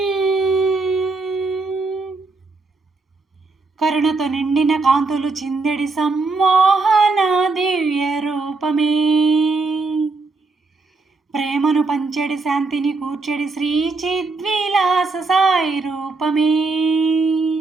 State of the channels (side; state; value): left; quieter; 3.8 dB